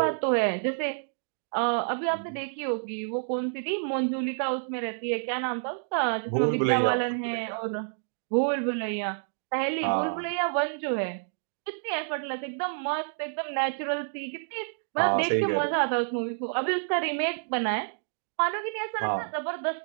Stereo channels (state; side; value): silent; left; digital silence